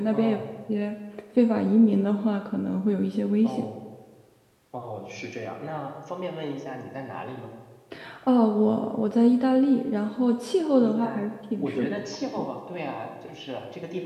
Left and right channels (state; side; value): identical; both; correlation 1.00